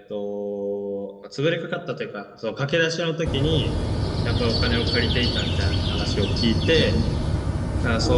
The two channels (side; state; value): both; identical; correlation 1.00